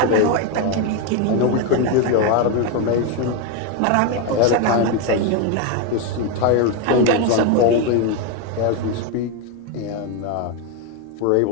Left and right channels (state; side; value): different; both; correlation 0.02